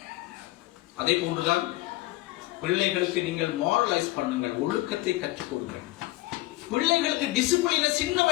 அதே போன்றுதான் பிள்ளைகளுக்கு நீங்கள் மாரலைஸ் பண்ணுங்கள், ஒழுக்கத்தை கற்றுக் கொடுங்கள். பிள்ளைகளுக்கு டிசிப்ளினை சின்ன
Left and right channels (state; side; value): quieter; right; 19.5 dB